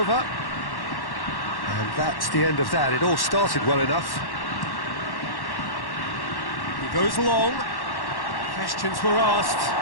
And that's the end of that. It all started well enough. He goes long. Questions were asked.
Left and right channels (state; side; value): late; right; 1.1 ms